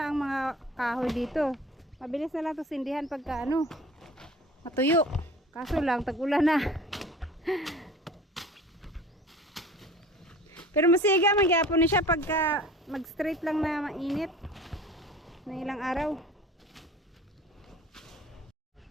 ang mga kahoy dito. Mabilis na lang ito sindihan pagka matuyo. Kaso lang, tag-ulan na. Pero masiga, magyapon na siya pagka mag-straight lang na mainit. Na ilang araw.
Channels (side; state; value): both; normal; correlation 0.43